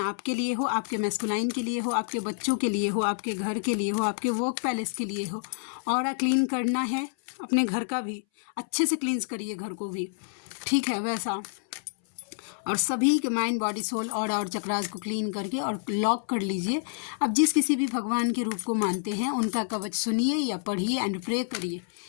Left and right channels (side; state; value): right; silent; 59 dB below the other